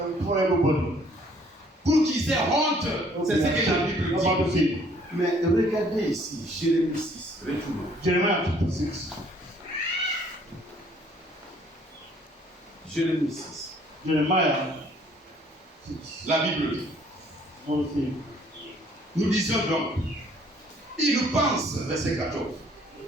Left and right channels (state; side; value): normal; both; correlation 0.60